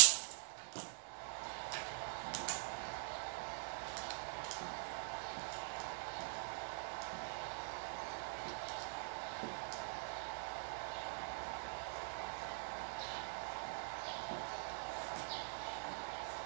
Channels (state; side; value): silent; left; digital silence